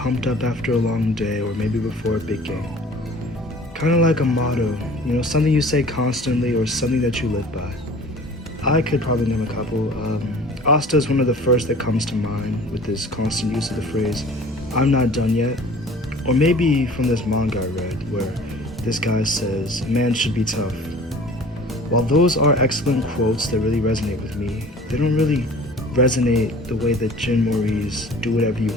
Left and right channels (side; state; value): both; normal; correlation 0.46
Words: up after a long day or maybe before a big game? Kind of like a motto, something you say constantly or something that you live by. I could probably name a couple. Asta is one of the first that comes to mind with this constant use of the phrase, "I'm not done yet." Or maybe from this manga I read where this guy says, "A man should be tough." While those are excellent quotes that really resonate with me, they don't really resonate the way that Jin Mori's "do whatever you